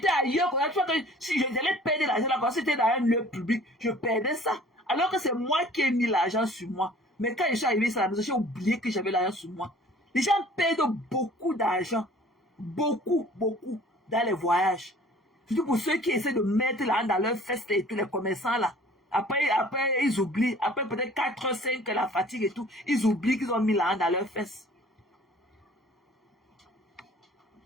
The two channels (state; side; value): normal; both; correlation 0.50